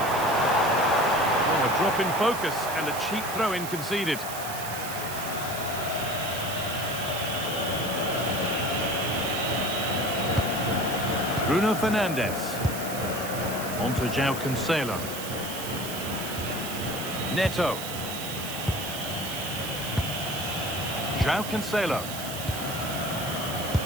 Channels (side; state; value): right; noise; hiss, 8 dB below the sound